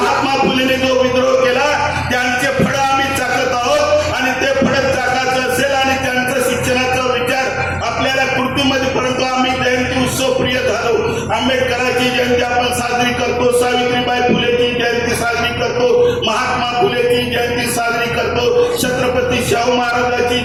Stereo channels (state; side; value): noise; left; hum, 23 dB below the sound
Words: फुलेने जो विद्रोह केला त्यांचे फळ आम्ही चाकत आहोत आणि ते फळ चाकायचं असेल आणि त्यांचं शिक्षणाचा विचार आपल्याला कृतीमध्ये, परंतु आम्ही जयंती उत्सव प्रिय झालो. आंबेडकरांची जयंती आपण साजरी करतो, सावित्रीबाई फुलेची जयंती साजरी करतो, महात्मा फुलेची जयंती साजरी करतो, छत्रपती शाहू महाराजांची